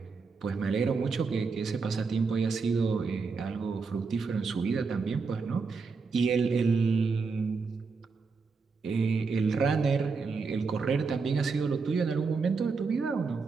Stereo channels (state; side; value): quieter; left; 4.8 dB